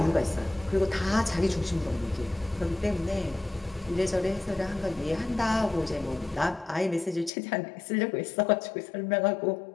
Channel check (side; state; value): right; drops out; at 7.3 s